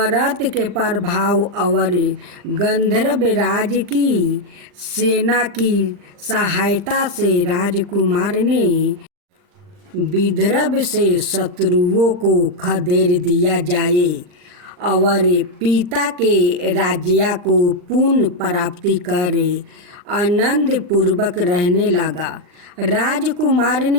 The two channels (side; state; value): left; late; 40 ms